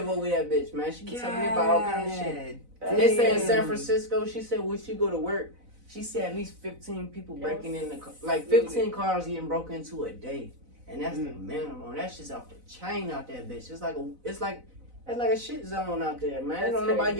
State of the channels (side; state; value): left; late; 4.0 ms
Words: over that bitch, man. She be telling me about all kind of shit. They say in San Damn. Francisco, she said when she go to work, she said at least 15 people breaking in the car. Like 15 cars getting broken into a day. And that's the minimum. That's just off the chain out there, bitch. It's like a shit zone out there, man. That's Don't nobody crazy.